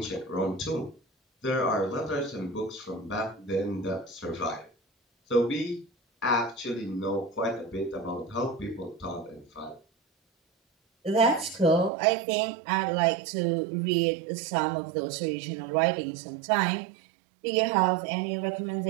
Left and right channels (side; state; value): left; drops out; at 11.9 s